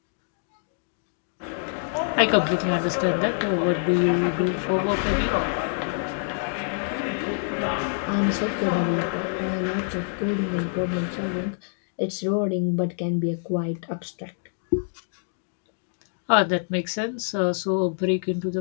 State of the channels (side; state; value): right; silent; digital silence